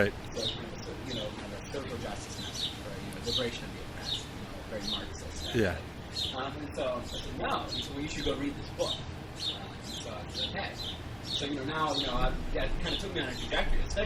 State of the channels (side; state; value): both; identical; correlation 1.00